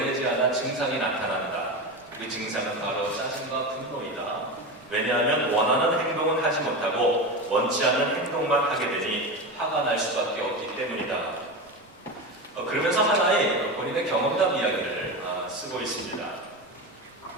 않아 증상이 나타난다. 그 증상은 바로 짜증과 분노이다. 왜냐하면 원하는 행동은 하지 못하고 원치 않는 행동만 하게 되니 화가 날 수밖에 없기 때문이다. 그러면서 하나의 본인의 경험담 이야기를 쓰고 있습니다.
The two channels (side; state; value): both; normal; correlation 0.22